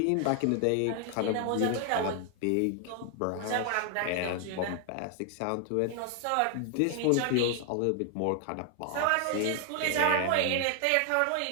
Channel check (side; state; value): both; different; correlation 0.00